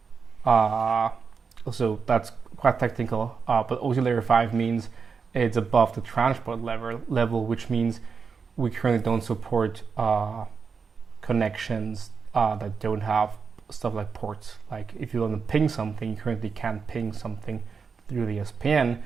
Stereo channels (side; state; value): left; quieter; 5.5 dB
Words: so that's quite technical, but OC layer 5 means it's above the transport level, which means we currently don't support connections that don't have stuff like ports. Like if you want to ping something, you currently can't ping something through the SPN